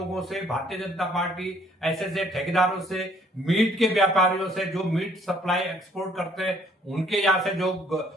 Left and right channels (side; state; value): both; normal; correlation 0.62